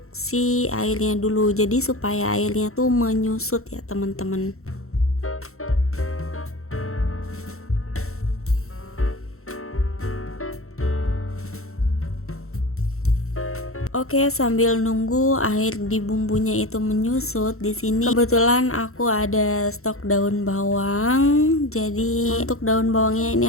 si airnya dulu, jadi supaya airnya tuh menyusut ya teman-teman. Oke, sambil nunggu air di bumbunya itu menyusut, di sini kebetulan aku ada stok daun bawang. Jadi untuk daun bawangnya ini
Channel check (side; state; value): right; late; 0.63 ms